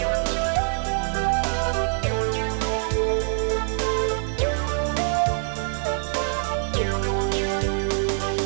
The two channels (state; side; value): silent; left; digital silence